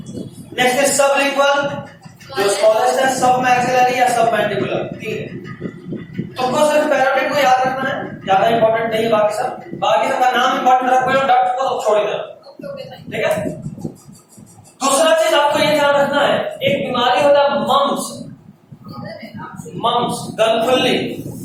Next is sublingual, जो स्मॉलेस्ट है, सब मैक्सिलरी या सब मैंडिबुलर। तुमको सिर्फ पैरोटिड को याद रखना है, ज्यादा इंपॉर्टेंट नहीं है बाकी सब। बाकी सबका नाम इंपॉर्टेंट रखो, डक्ट को तो छोड़ देना, ठीक है। दूसरा चीज आपको ये ध्यान रखना है, एक बीमारी होता है मम्स, गलफुल्ली,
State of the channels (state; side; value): identical; both; correlation 1.00